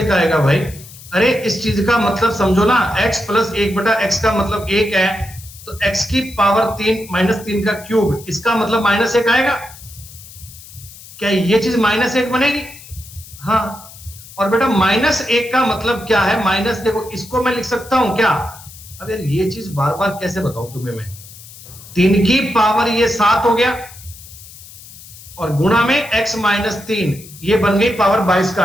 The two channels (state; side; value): noise; left; hiss, 18 dB below the sound